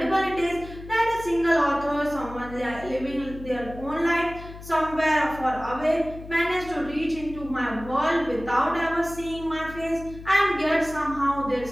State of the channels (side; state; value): left; noise; hum, 14 dB below the sound